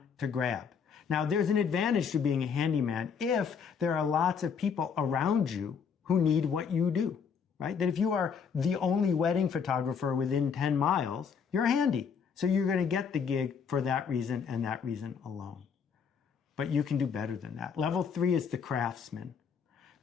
to grab. Now, there's an advantage to being a handyman if there are lots of people around you who need what you do, right? That if you are the only wedding photographer within 10 miles, you're handy. So you're going to get the gig for that reason and that reason alone. But you can do better than that. Level 3 is the craftsman.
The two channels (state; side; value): quieter; right; 6.5 dB